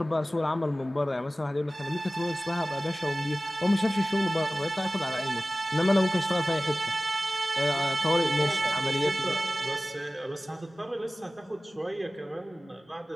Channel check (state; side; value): normal; both; correlation 0.97